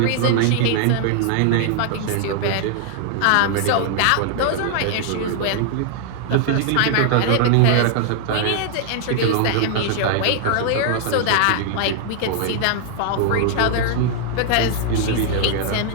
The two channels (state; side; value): different; both; correlation -0.01